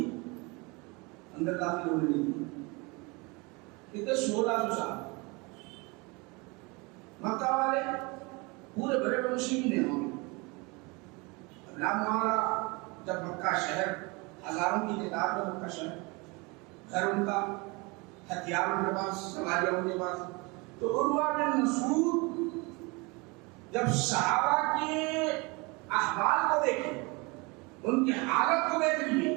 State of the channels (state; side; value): quieter; left; 27.2 dB